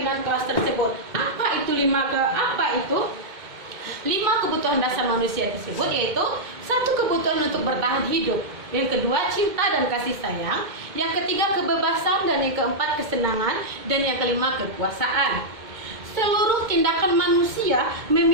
kelas tersebut. Apa itu 5 kebutuhan dasar manusia tersebut, yaitu 1 kebutuhan untuk bertahan hidup, yang kedua cinta dan kasih sayang, yang ketiga kebebasan, dan yang keempat kesenangan, dan yang kelima kekuasaan. Seluruh tindakan manusia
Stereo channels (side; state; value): left; late; 2.1 ms